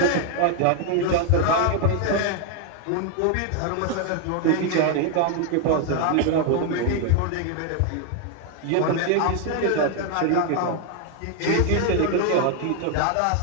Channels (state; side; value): different; both; correlation 0.00